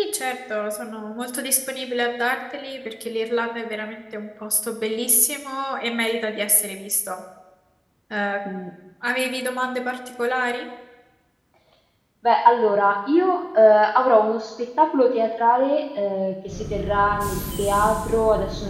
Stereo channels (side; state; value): both; identical; correlation 1.00